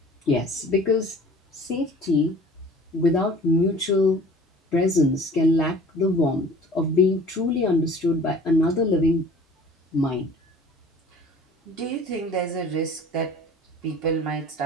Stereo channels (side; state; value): both; normal; correlation 0.46